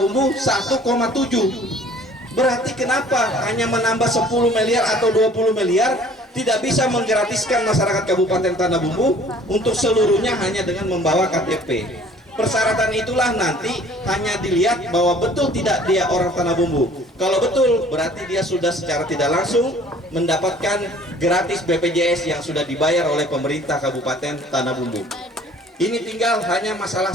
1,7. Berarti kenapa hanya menambah 10 miliar atau 20 miliar tidak bisa menggratiskan masyarakat Kabupaten Tanah Bumbu untuk seluruhnya hanya dengan membawa KTP? Persyaratan itulah nanti hanya dilihat bahwa betul tidak dia orang Tanah Bumbu. Kalau betul, berarti dia sudah secara tidak langsung mendapatkan gratis BPJS yang sudah dibayar oleh pemerintah Kabupaten Tanah Bumbu. Ini tinggal hanya masalah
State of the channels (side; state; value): both; normal; correlation 0.52